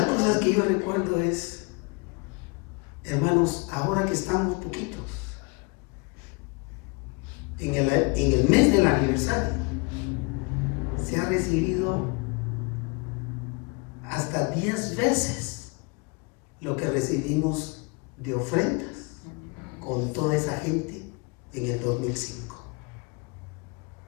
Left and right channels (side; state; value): right; quieter; 29.8 dB